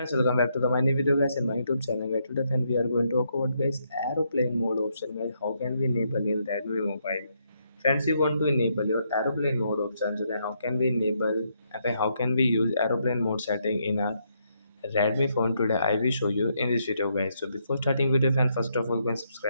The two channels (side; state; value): both; inverted; correlation -0.76